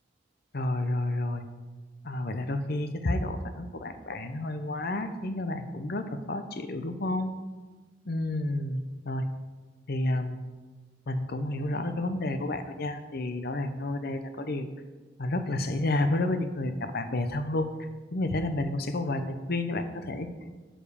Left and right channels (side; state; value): both; normal; correlation 0.65